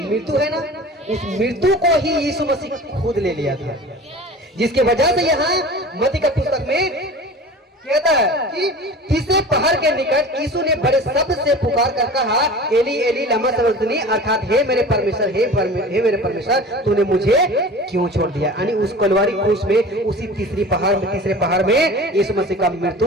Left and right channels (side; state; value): both; normal; correlation 0.38